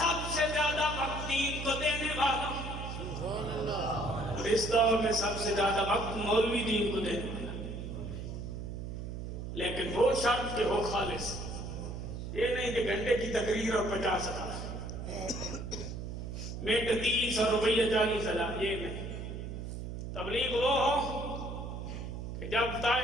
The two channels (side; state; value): right; noise; hum, 6 dB below the sound